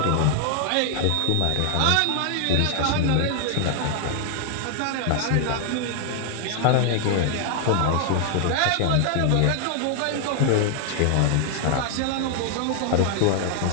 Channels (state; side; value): different; both; correlation 0.00